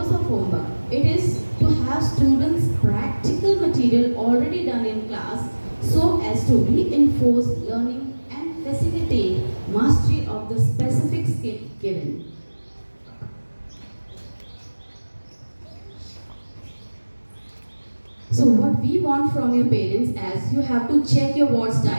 of homework? It is to have students practical material already done in class so as to reinforce learning and facilitate mastery of the specific skill given. So what we want from your parents is you have to check your ward's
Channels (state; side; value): inverted; both; correlation -1.00